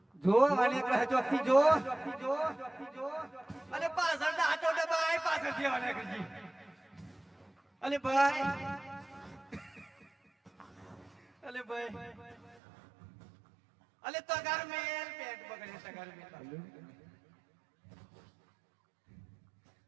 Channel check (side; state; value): left; drops out; at 12.6 s